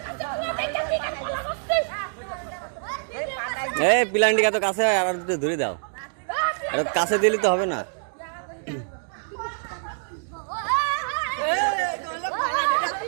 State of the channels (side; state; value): left; silent; digital silence